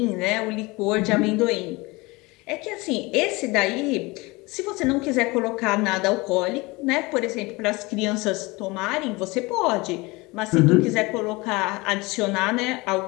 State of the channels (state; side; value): quieter; right; 23.8 dB